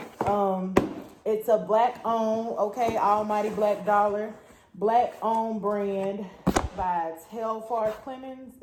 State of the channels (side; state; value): both; identical; correlation 1.00